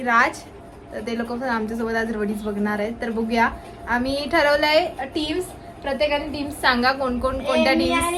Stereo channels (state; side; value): identical; both; correlation 1.00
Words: राज. तर ते लोक पण आमच्यासोबत आज रोडीज बघणार आहेत. तर बघूया. आम्ही ठरवलंय टीम्स, प्रत्येकाने टीम्स सांगा कोण कोणत्या